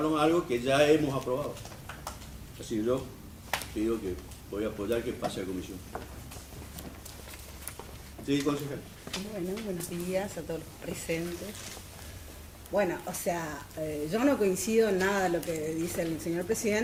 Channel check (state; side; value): identical; both; correlation 1.00